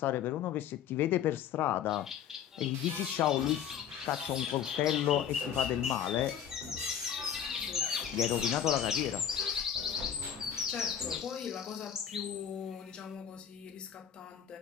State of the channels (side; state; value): right; quieter; 9.0 dB